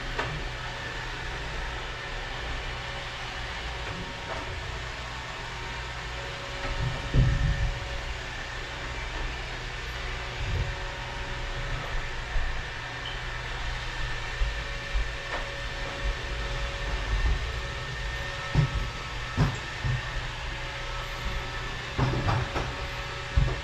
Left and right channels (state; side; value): identical; both; correlation 1.00